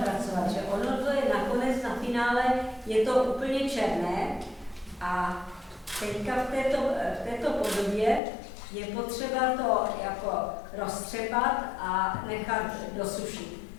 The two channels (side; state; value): right; drops out; at 8.2 s